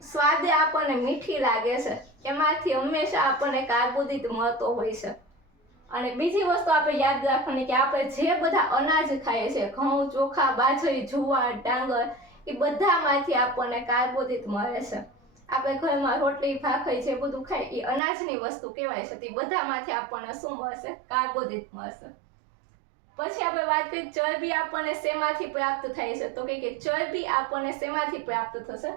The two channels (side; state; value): left; drops out; at 18.0 s